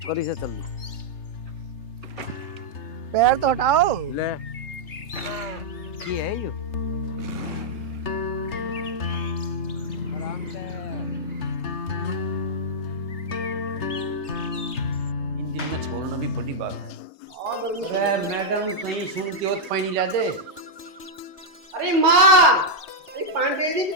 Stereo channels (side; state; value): right; late; 3.3 ms